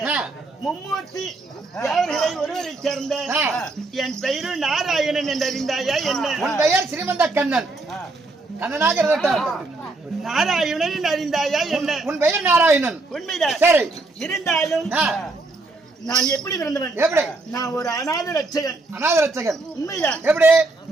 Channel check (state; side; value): quieter; left; 3.2 dB